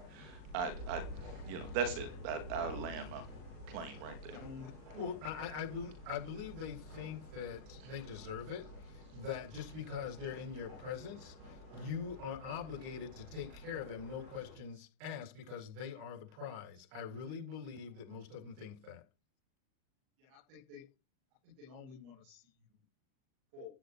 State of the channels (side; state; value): left; late; 38 ms